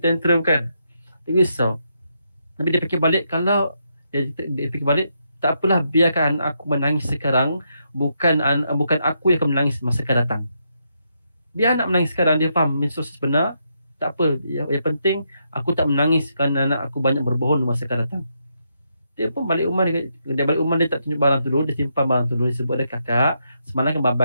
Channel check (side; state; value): both; inverted; correlation -0.80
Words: tantrum kan. Dia risau. Tapi dia fikir balik, kalau dia fikir balik, tak apalah, biarkan aku menangis sekarang, bukan aku yang akan menangis masa akan datang. Biar anak menangis sekarang, dia faham proses benar, tak apa. Yang penting aku tak menangis kerana anak aku banyak berbohong masa akan datang. Dia pun balik rumah, dia tak tunjuk barang tu dulu, dia simpan barang tu dulu. Dia sebut dia, kakak, semalam kan